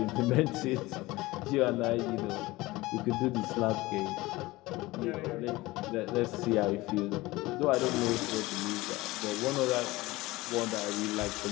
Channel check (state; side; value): quieter; right; 19.9 dB